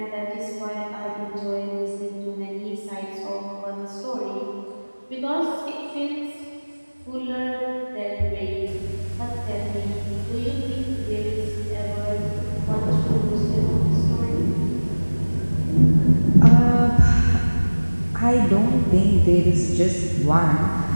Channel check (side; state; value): both; inverted; correlation -1.00